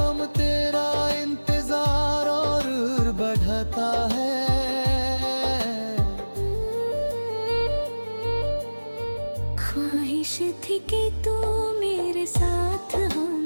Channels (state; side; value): inverted; both; correlation -1.00